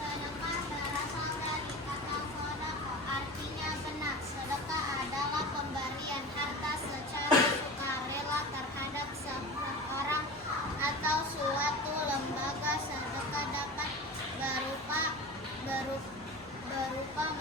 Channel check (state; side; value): normal; both; correlation 0.31